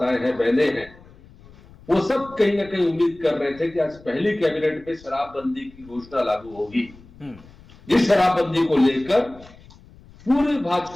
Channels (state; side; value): noise; left; rumble, 23 dB below the sound